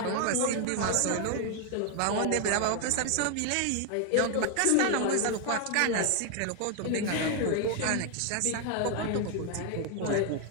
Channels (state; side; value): different; both; correlation 0.01